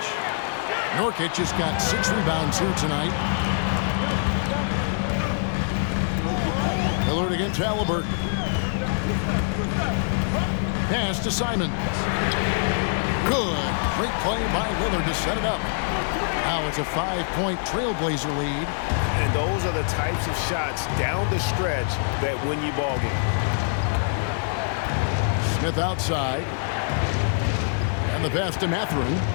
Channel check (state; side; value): silent; right; digital silence